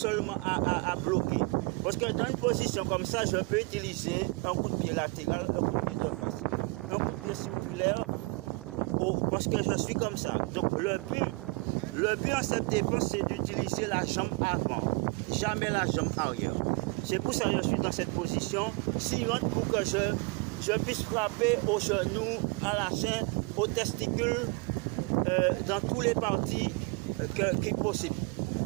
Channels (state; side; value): quieter; left; 27.2 dB